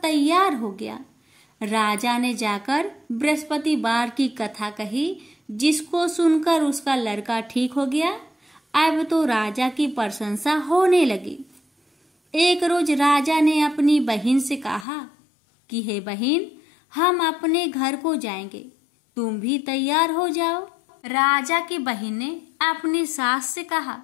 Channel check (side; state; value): right; drops out; at 14.9 s